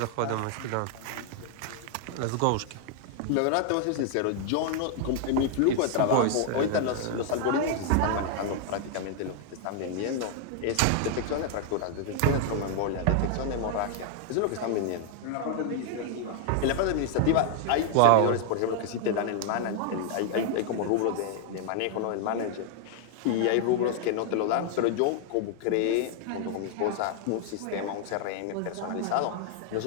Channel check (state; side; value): different; both; correlation 0.00